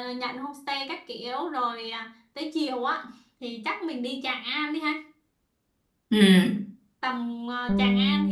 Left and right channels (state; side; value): identical; both; correlation 1.00